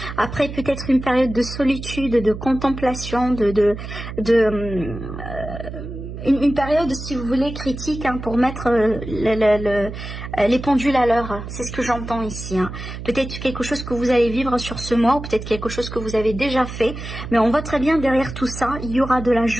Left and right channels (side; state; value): right; noise; hum, 9 dB below the sound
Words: Après, peut-être une période de solitude, de contemplation, une période, si vous voulez, critique, hein, pour mettre les pendules à l'heure. C'est ce que j'entends ici. Hein. Peut-être quelque chose que vous allez vivre sur ce mois, ou peut-être quelque chose que vous avez déjà fait. Mais on voit très bien derrière tout ça, il y aura de la